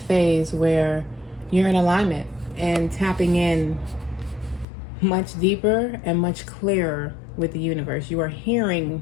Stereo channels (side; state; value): right; drops out; at 4.7 s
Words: where you're in alignment and tapping in much deeper and much clearer with the universe. You are hearing